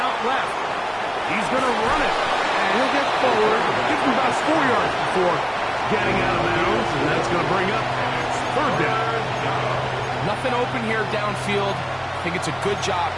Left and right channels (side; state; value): both; identical; correlation 1.00